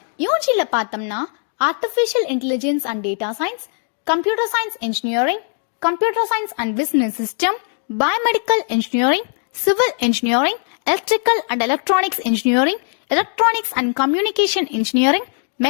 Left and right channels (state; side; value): silent; right; 55 dB below the other